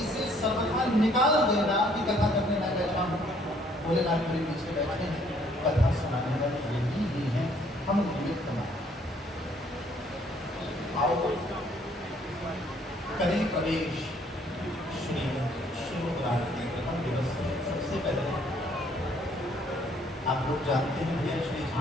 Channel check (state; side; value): normal; both; correlation 0.63